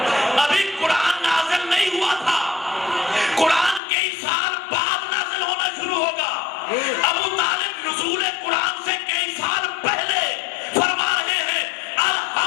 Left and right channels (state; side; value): drops out; right; at 3.8 s